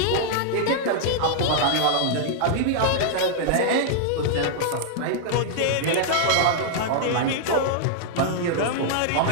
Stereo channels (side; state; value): both; different; correlation -0.01